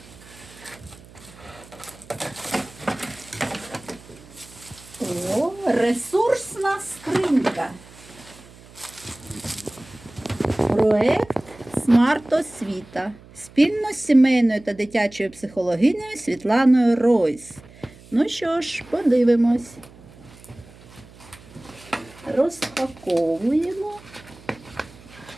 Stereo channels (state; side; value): noise; right; hum, 22 dB below the sound